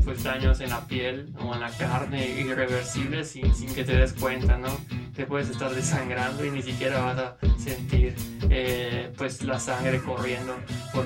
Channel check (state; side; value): identical; both; correlation 1.00